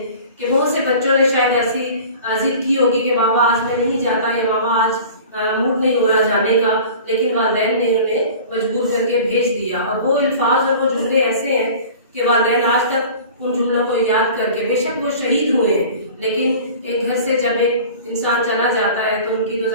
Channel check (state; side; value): inverted; both; correlation -0.41